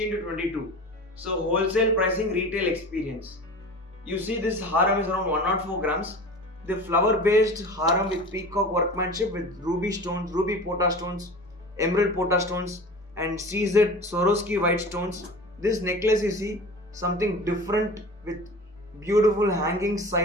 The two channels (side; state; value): both; normal; correlation 0.36